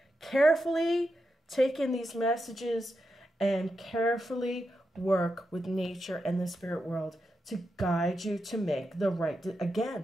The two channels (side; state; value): both; normal; correlation 0.87